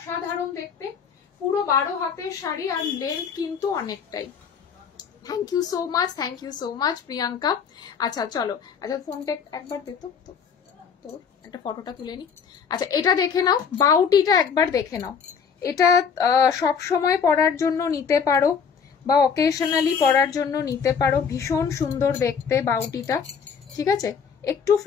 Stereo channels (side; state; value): right; quieter; 6.5 dB